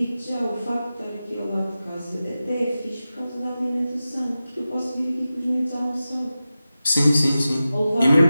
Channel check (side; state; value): both; inverted; correlation -0.94